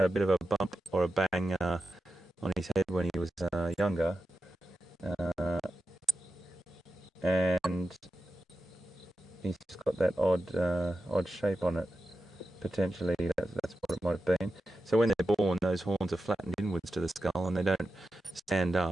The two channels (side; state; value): both; normal; correlation 0.91